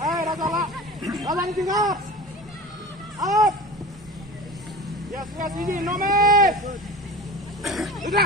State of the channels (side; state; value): both; normal; correlation 0.35